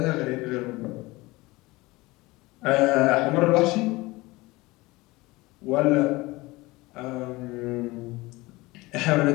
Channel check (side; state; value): right; quieter; 21.4 dB